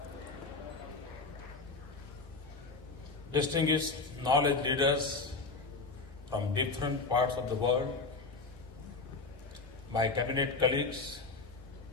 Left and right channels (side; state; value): right; quieter; 3.9 dB